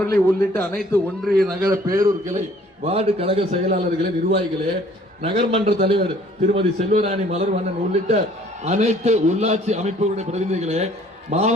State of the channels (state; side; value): normal; both; correlation 0.57